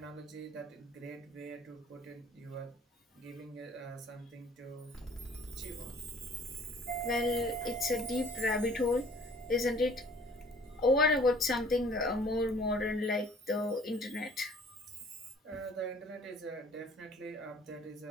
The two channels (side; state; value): both; normal; correlation 0.53